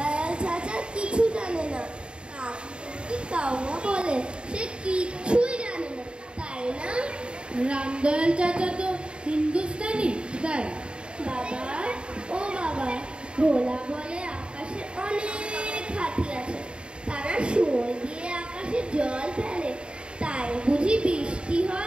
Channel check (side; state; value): left; late; 0.053 ms